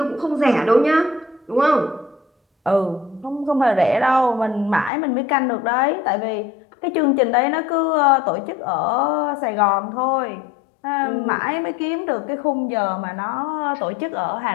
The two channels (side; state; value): right; drops out; at 4.9 s